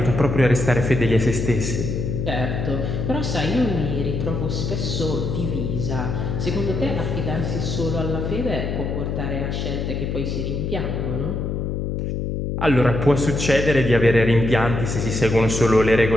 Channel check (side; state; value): left; noise; hum, 2 dB below the sound